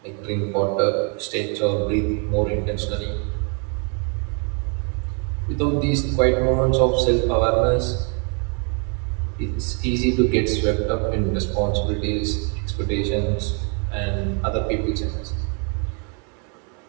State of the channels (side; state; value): left; quieter; 37.9 dB